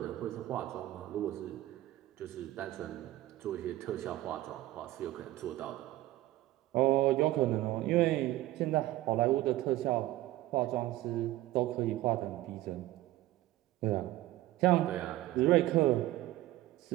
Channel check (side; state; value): left; quieter; 16.1 dB